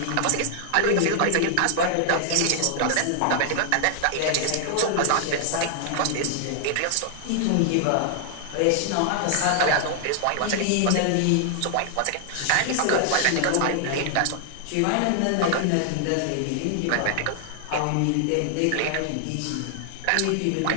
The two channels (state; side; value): different; both; correlation 0.00